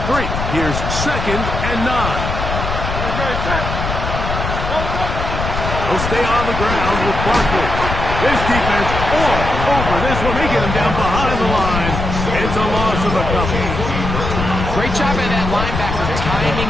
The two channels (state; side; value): noise; left; rumble, 4 dB below the sound